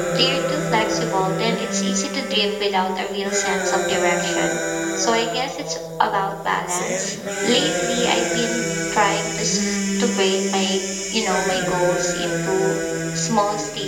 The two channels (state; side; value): identical; both; correlation 1.00